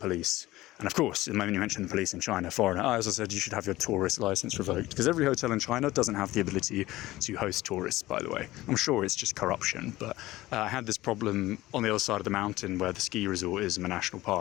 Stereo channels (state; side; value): quieter; right; 17.4 dB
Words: And of course, the moment you mention the police in China, foreigner, I also said you should have your tourist license revoked, because every hotel in China doesn't have the ability to host tourists, by the way. I'm sure it's just corruption, but I had this problem on the other side of the mountain where the ski resort is in a national